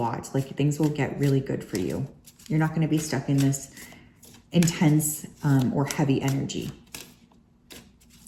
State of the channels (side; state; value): both; identical; correlation 1.00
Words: Like things will get really good for you. You're not going to be stuck in this intense or heavy energy.